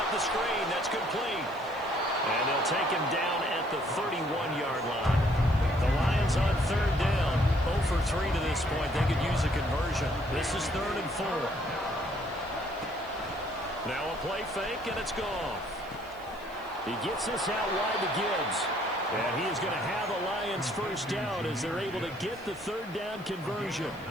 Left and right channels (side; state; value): right; noise; hiss, 26 dB below the sound